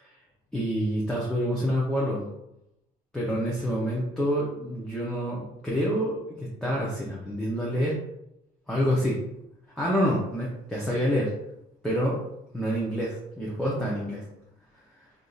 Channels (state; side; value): normal; both; correlation 0.67